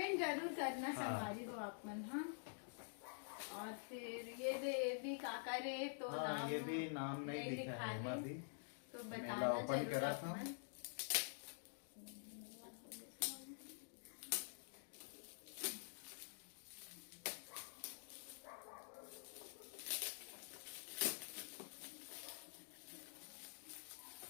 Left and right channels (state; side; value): silent; right; digital silence